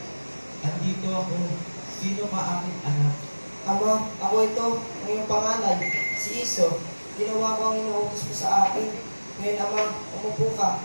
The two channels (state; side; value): inverted; both; correlation -1.00